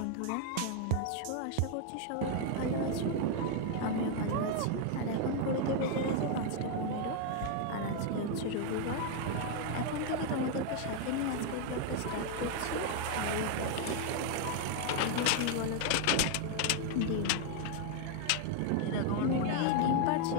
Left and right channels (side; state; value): both; different; correlation 0.00